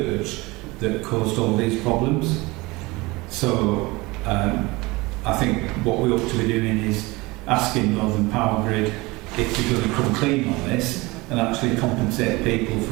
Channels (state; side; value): quieter; left; 22.9 dB